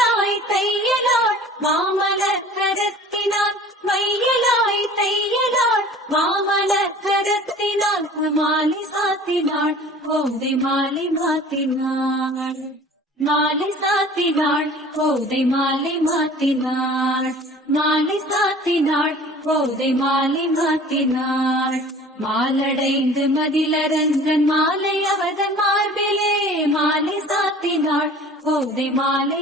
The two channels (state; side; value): normal; both; correlation 0.45